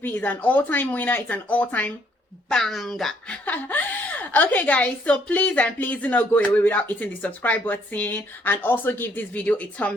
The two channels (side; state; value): both; normal; correlation 0.67